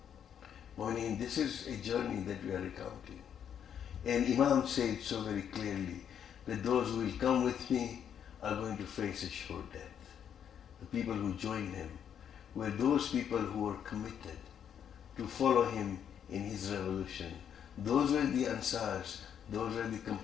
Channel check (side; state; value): right; quieter; 8.7 dB